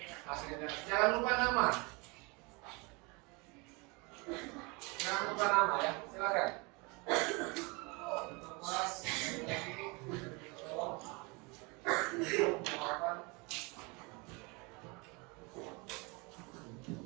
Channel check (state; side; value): quieter; left; 28.3 dB